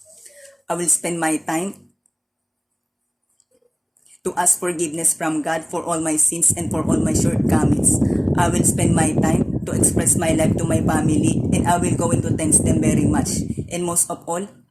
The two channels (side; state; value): both; identical; correlation 1.00